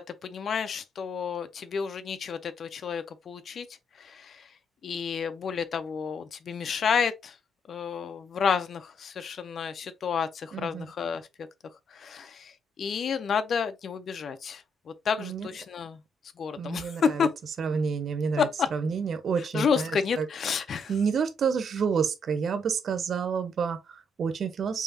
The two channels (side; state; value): both; normal; correlation 0.74